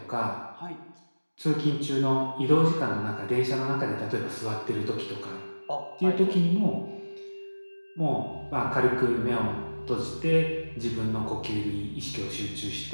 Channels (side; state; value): both; inverted; correlation -1.00